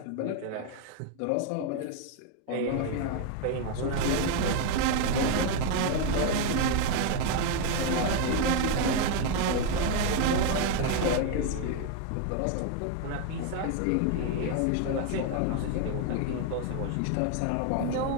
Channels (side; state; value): both; different; correlation 0.01